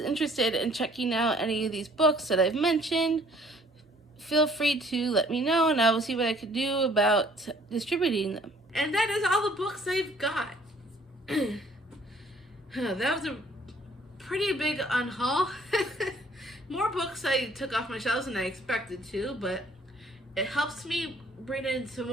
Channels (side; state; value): both; normal; correlation 0.58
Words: interested in checking out any of these books that I've mentioned, feel free to let me know, and I will see what I can do about distributing them. And that is all the books I've got. That was a pretty big unhaul. More books I took off my shelves than I expected to, but it helps me bring in some